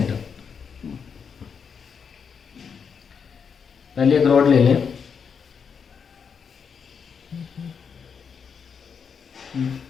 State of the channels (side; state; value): right; quieter; 6.5 dB